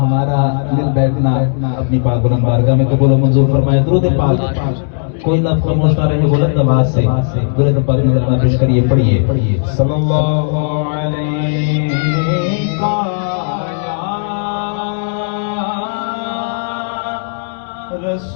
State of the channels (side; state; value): right; silent; digital silence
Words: دل بیٹھنا اپنی پاک بلند بارگاہ میں قبول و منظور فرمائے. درود پاک کوئی لفظ خاموش نہ رہے بلند آواز سے درود پاک میں ذرا پیش کریے. پڑھیے صلی اللہ علیہ